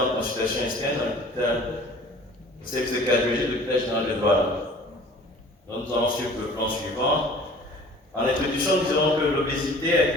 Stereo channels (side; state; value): both; normal; correlation 0.47